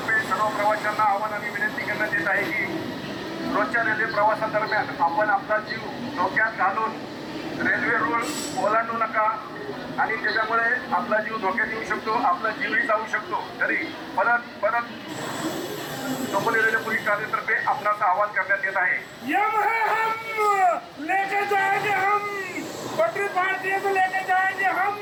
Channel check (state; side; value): identical; both; correlation 1.00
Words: सर्व प्रवाशांना आव्हान आणि विनंती करण्यात येत आहे की रोजच्या रेल्वे प्रवासादरम्यान आपण आपला जीव धोक्यात घालून रेल्वे रूळ ओलांडू नका आणि त्याच्यामुळे आपला जीव धोक्यात येऊ शकतो, आपला जीवही जाऊ शकतो. तरी परत चोपली रेल्वे पोलीस ठाण्यातर्फे आपणाचं आवाहन करण्यात येत आहे. यम है हम लेके जाएंगे हम पटरी पार्टी तो लेके जाएंगे हम